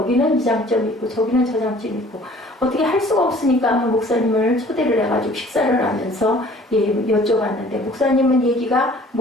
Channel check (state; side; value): normal; both; correlation 0.52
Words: 이 장점이 있고 저기는 저 장점이 있고 어떻게 할 수가 없으니까 목사님을 초대를 해가지고 식사를 하면서 여쭤봤는데 목사님은 얘기가